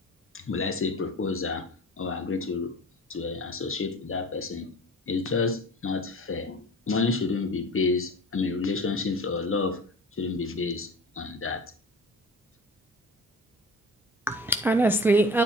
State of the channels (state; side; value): normal; both; correlation 0.39